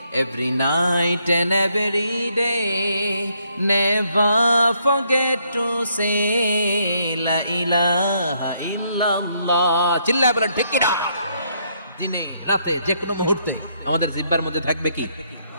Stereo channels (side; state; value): both; inverted; correlation -0.73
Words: every night and every day, never forget to say la ilaha illallah. চিল্লায় বলেন ঠিক কিনা? দিনে রাতে যে কোনো মুহূর্তে আমাদের জিহ্বার মধ্যে থাকবে কি?